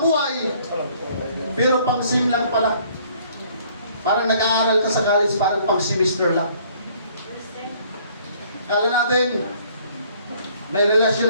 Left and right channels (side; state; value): both; inverted; correlation -0.60